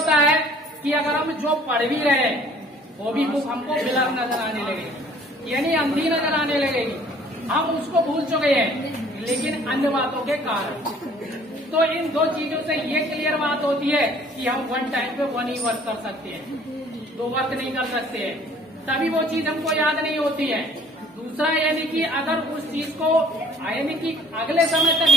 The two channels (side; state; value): both; normal; correlation 0.55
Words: है कि अगर हम जो पढ़ भी रहे हैं वो भी बुक हमको ब्लर नजर आने लगे, यानी अंधी नजर आने लगेगी। हम उसको भूल चुके हैं, लेकिन अन्य बातों के कारण। तो इन दो चीजों से ये क्लियर बात होती है कि हम वन टाइम पे वन ही वर्क कर सकते हैं, दो वर्क नहीं कर सकते हैं, तभी वो चीज हमको याद नहीं होती है। दूसरा यानी कि अगर उस चीज को यानी कि अगले समय तक